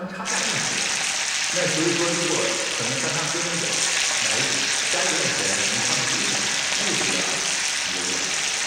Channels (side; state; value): both; identical; correlation 1.00